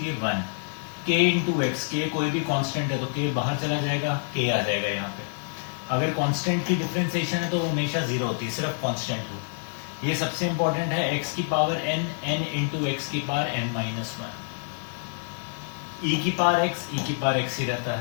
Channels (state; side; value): silent; right; digital silence